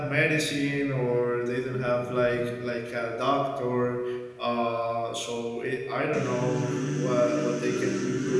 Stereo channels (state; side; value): identical; both; correlation 1.00